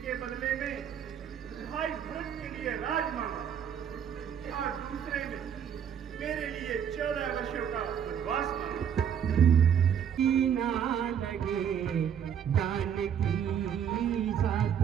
के बदले में भाई भरत के लिए राज मांगा और दूसरे में मेरे लिए 14 वर्षों का वनवास मांगा। ना लगे जानकी साथ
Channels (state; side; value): quieter; left; 8.5 dB